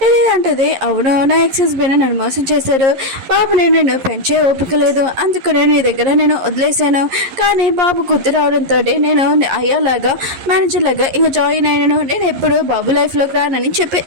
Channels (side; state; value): left; late; 11 ms